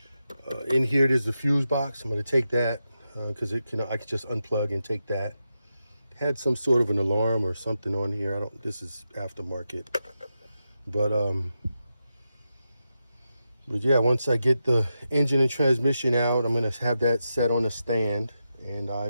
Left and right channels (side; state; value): both; inverted; correlation -0.88